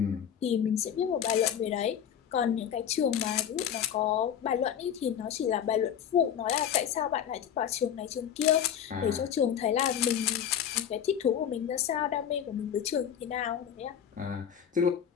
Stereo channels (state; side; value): quieter; right; 9.1 dB